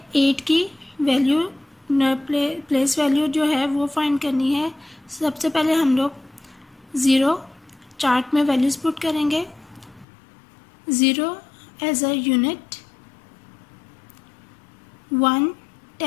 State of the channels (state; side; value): drops out; right; at 10.1 s